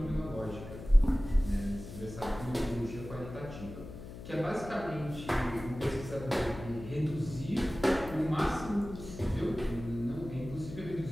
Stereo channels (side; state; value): left; noise; hum, 12 dB below the sound